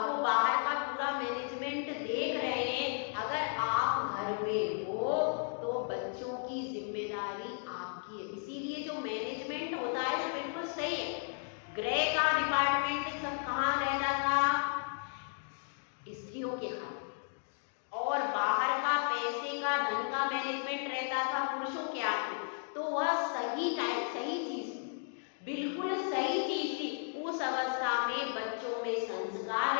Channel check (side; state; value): right; silent; 55 dB below the other